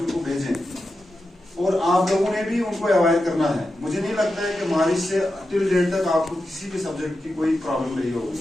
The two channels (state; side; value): normal; both; correlation 0.90